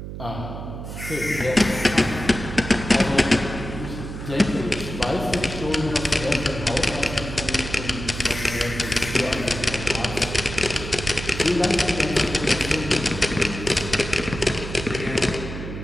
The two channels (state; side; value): noise; right; hum, 9 dB below the sound